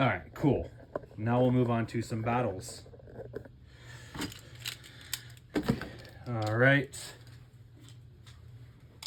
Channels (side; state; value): both; identical; correlation 1.00